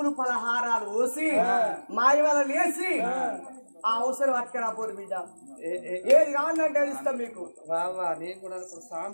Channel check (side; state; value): both; inverted; correlation -1.00